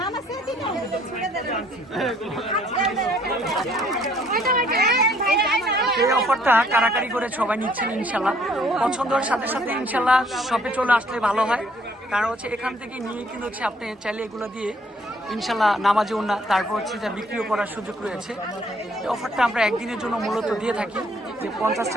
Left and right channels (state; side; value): normal; both; correlation 0.63